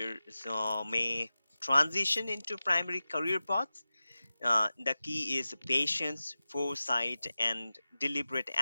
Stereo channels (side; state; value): both; inverted; correlation -0.95